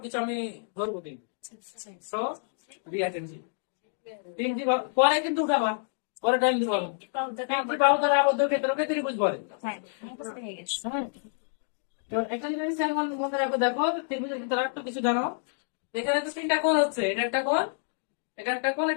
আমি ধরবো কিন্তু। So, be attentive. পরে কিন্তু উঠাবা, পরে টাইম দিব। তিনটি বাহু দ্বারা আবদ্ধ ক্ষেত্রকে ত্রিভুজ বলে। তো একটা জিনিস এখন মনে রাখো, দেখো ত্রিভুজের ভিতরে একটু কিছু জানো। এখানে তো তিনটা কোণ হচ্ছে, এটা একটা কোণ, এটা একটা কোণ,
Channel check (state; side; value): silent; right; digital silence